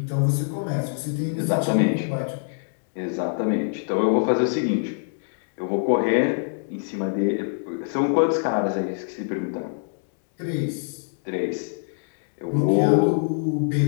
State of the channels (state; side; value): silent; right; digital silence